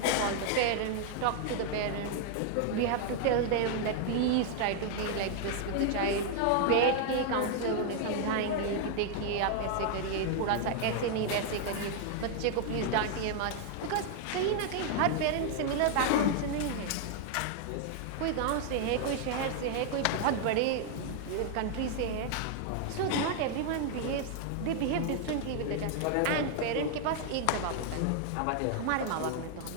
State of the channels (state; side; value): different; both; correlation 0.00